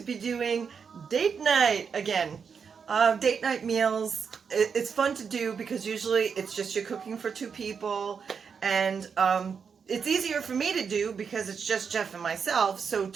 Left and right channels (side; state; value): left; quieter; 6.2 dB